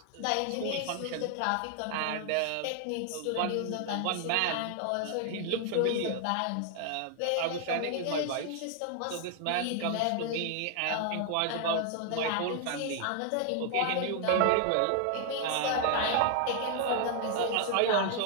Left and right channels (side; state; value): both; different; correlation 0.00